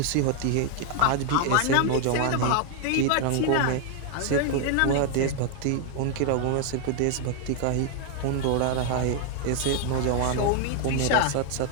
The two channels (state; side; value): different; both; correlation 0.00